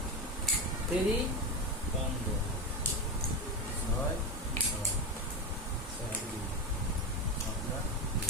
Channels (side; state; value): both; normal; correlation 0.18